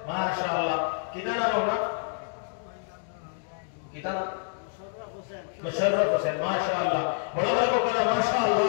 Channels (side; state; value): right; silent; digital silence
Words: माशाअल्लाह कितना नाम होगा कितना मुशर्रफ हुसैन माशाअल्लाह बड़ा बड़ा को करा